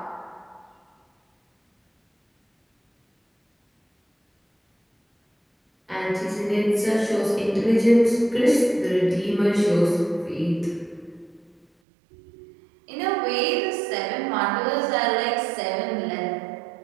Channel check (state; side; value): drops out; left; at 11.7 s